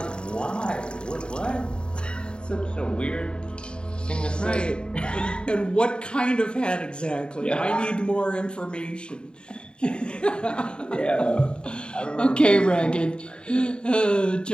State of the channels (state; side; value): late; right; 0.051 ms